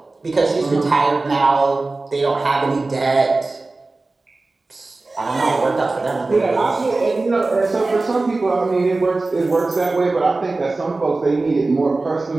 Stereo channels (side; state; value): left; quieter; 3.4 dB